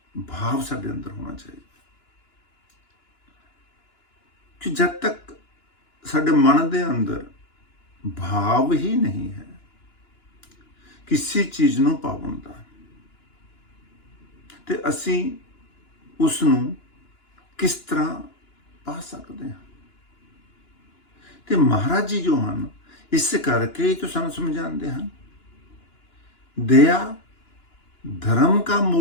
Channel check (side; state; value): right; late; 2.9 ms